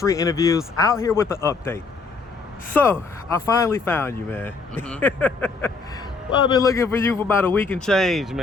Interviews out here with the update. So, I finally found you, man. Well, I've been looking for you for about a week and change,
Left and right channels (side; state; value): right; quieter; 4.4 dB